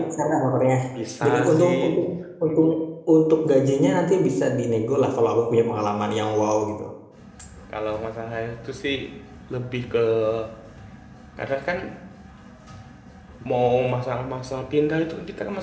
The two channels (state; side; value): identical; both; correlation 1.00